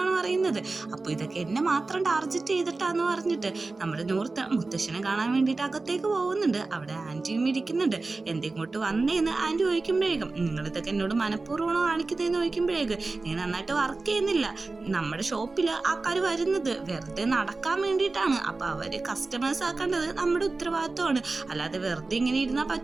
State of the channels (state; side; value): quieter; left; 3.6 dB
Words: പറയുന്നത്. അപ്പൊ ഇതൊക്കെ എന്നെ മാത്രം ടാർഗറ്റ് ചെയ്തിട്ടാന്ന് പറഞ്ഞിട്ട് നമ്മുടെ നോർത്ത് മുത്തശ്ശനെ കാണാൻ വേണ്ടിയിട്ട് അകത്തേക്ക് പോകുന്നുണ്ട്. അവിടെ ആന്റിയും ഇരിക്കുന്നുണ്ട്. എന്തിങ്ങോട്ട് വന്നേന്ന് ആന്റി ചോദിക്കുമ്പോഴേക്കും നിങ്ങൾ ഇതൊക്കെ എന്നോട് മനഃപൂർവ്വമാണോ കാണിക്കുന്നതെന്ന് ചോദിക്കുമ്പോഴേക്ക് നീ നന്നായിട്ട് വർക്ക് ചെയ്യുന്നില്ല, നമ്മുടെ ഷോപ്പില് ആൾക്കാർ വരുന്നത് വെറുതെ നടക്കാൻ വേണ്ടിയിട്ടാണ്, അപ്പൊ അവര് കസ്റ്റമേഴ്സ് ആക്കേണ്ടത് നമ്മുടെ ഉത്തരവാദിത്വമാണ്, അല്ലാതെ വെറുതെ ഇങ്ങനെ ഇരുന്നാൽ